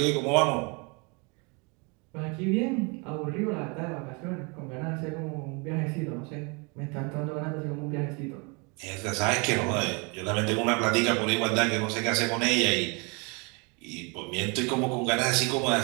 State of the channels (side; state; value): left; quieter; 31.4 dB